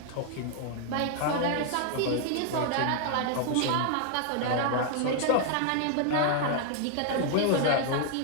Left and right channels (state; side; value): different; both; correlation 0.00